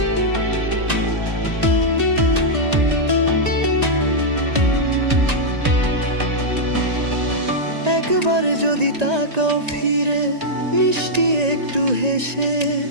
একবার যদি তাকাও ফিরে মিষ্টি একটু হেসে,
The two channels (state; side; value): late; left; 1.9 ms